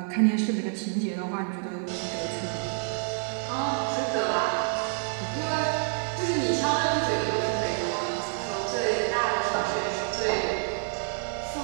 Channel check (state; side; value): silent; left; 59 dB below the other